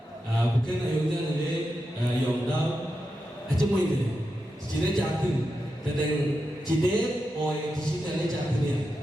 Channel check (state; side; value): normal; both; correlation 0.88